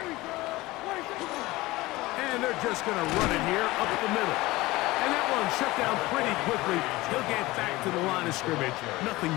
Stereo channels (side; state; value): right; quieter; 19.7 dB